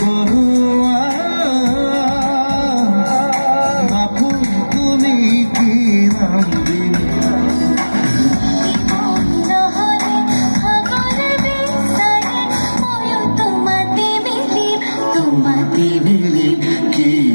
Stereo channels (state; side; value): inverted; both; correlation -1.00